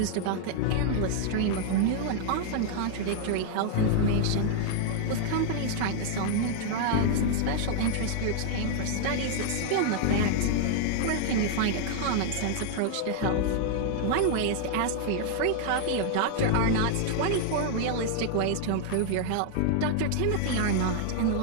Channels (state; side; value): different; both; correlation -0.01